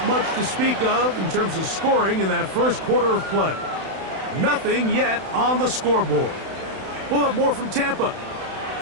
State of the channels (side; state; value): left; late; 31 ms